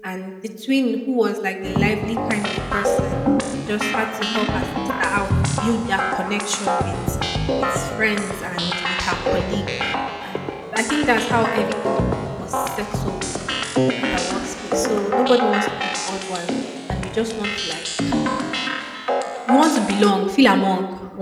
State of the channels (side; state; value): both; identical; correlation 1.00